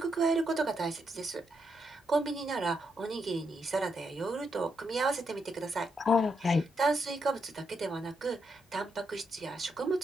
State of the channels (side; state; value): both; normal; correlation 0.80